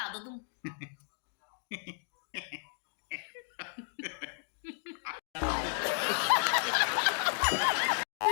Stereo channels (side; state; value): right; silent; digital silence